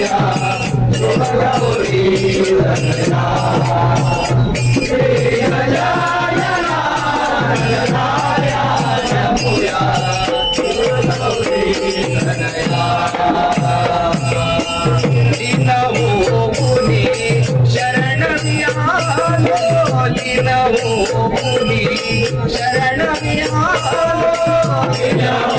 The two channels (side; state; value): both; identical; correlation 1.00